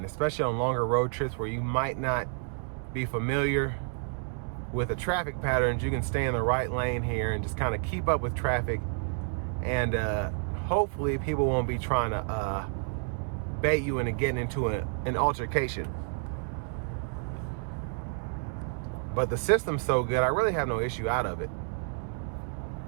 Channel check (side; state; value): left; silent; 57 dB below the other